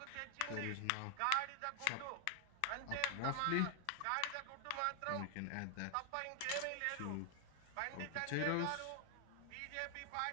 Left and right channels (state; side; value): different; both; correlation 0.00